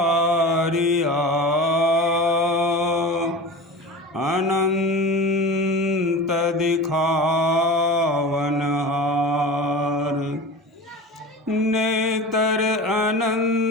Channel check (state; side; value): normal; both; correlation 0.32